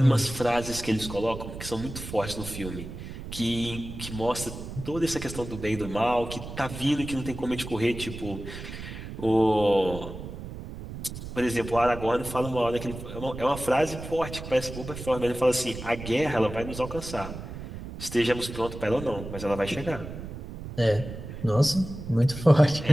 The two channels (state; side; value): noise; right; rumble, 10 dB below the sound